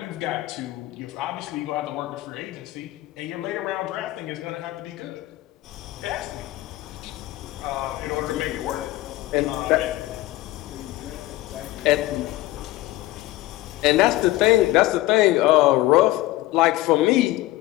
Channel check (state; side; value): quieter; right; 17.2 dB